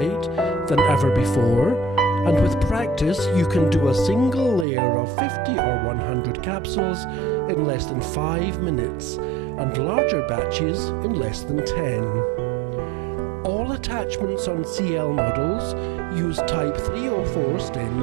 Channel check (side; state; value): left; drops out; at 4.7 s